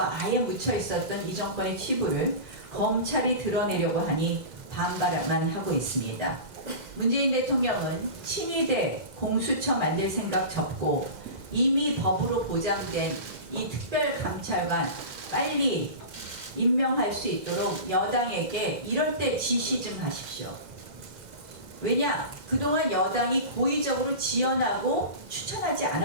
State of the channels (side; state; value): left; late; 2.0 ms